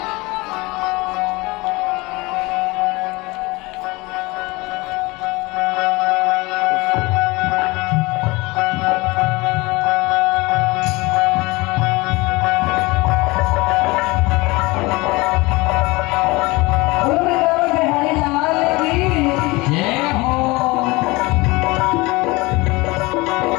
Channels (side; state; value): right; quieter; 23.1 dB